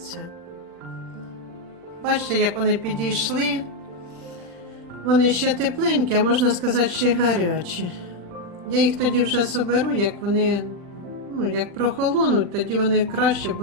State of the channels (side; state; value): left; late; 40 ms